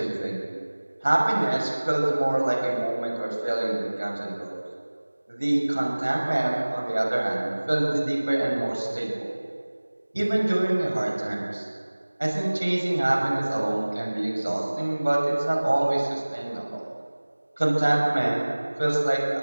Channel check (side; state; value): both; inverted; correlation -1.00